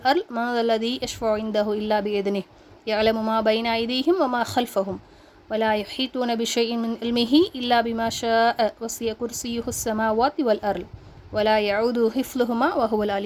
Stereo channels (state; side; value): identical; both; correlation 1.00